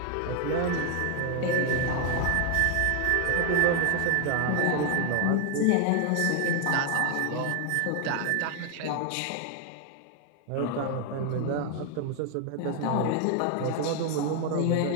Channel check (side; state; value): both; different; correlation 0.00